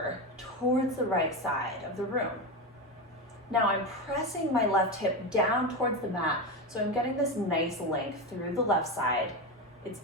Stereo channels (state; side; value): normal; both; correlation 0.17